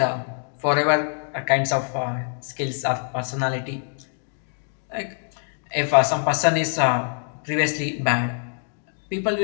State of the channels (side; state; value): right; silent; 55 dB below the other